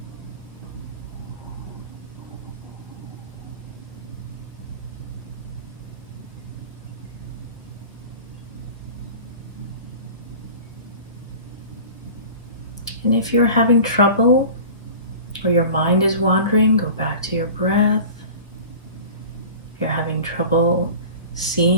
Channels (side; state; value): both; inverted; correlation -0.38